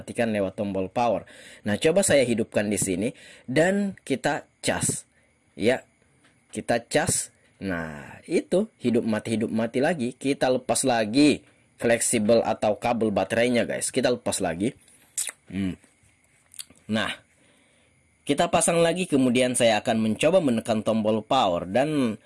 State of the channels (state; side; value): identical; both; correlation 1.00